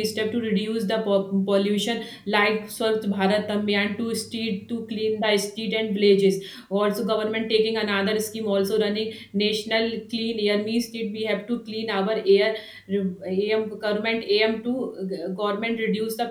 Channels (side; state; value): both; identical; correlation 1.00